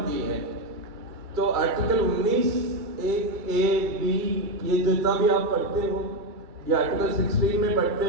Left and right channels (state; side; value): late; left; 2.3 ms